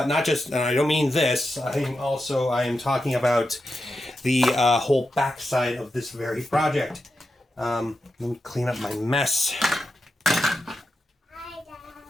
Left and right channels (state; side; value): normal; both; correlation 0.89